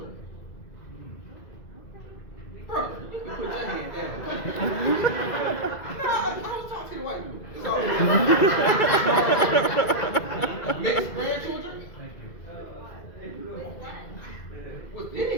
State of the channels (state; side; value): late; right; 2.0 ms